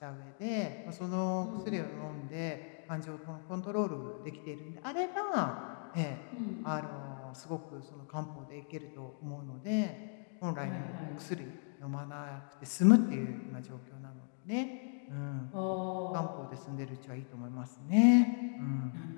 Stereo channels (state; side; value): silent; right; 53 dB below the other